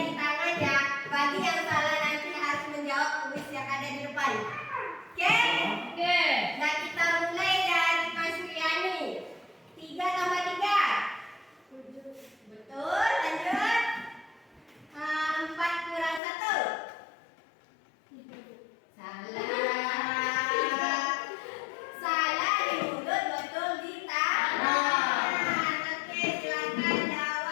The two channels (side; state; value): right; drops out; at 16.2 s